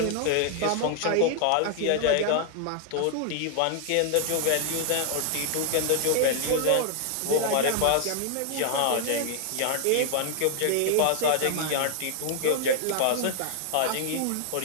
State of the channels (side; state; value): both; different; correlation 0.00